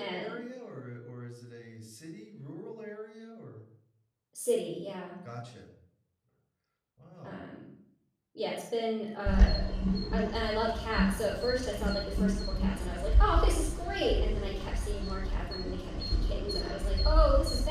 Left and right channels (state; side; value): identical; both; correlation 1.00